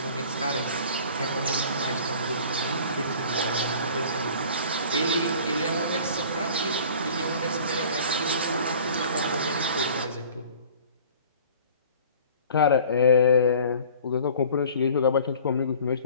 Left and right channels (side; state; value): both; inverted; correlation -0.47